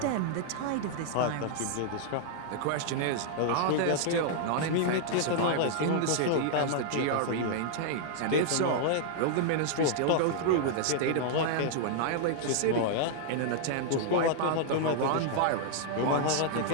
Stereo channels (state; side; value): different; both; correlation -0.01